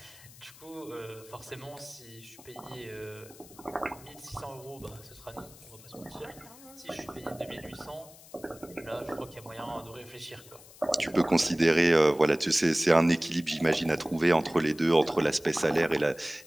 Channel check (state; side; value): noise; left; hiss, 21 dB below the sound